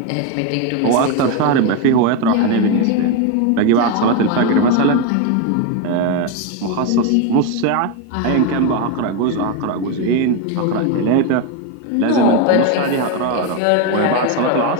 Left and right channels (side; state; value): both; different; correlation 0.02